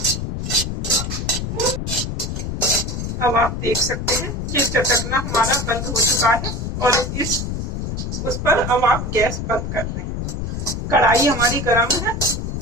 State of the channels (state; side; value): noise; left; rumble, 4 dB below the sound